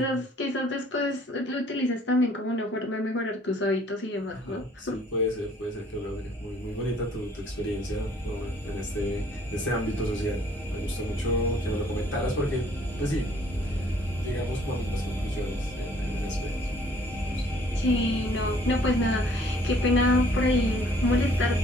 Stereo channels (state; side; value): normal; both; correlation 0.59